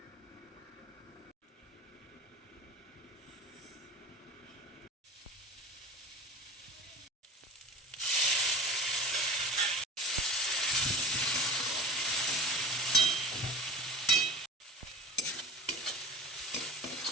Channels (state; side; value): normal; both; correlation 0.38